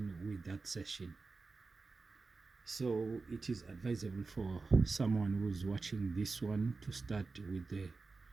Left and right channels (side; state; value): left; quieter; 4.0 dB